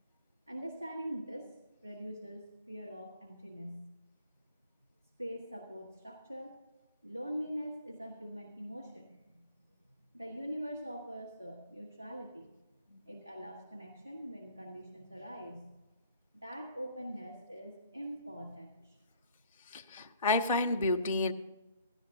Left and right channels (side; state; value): both; inverted; correlation -0.55